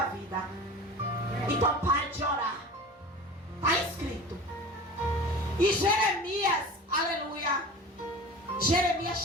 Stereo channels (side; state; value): both; normal; correlation 0.36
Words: vida. Então pare de orar. Está escrito. E Jeremias, aleluia, Jeremias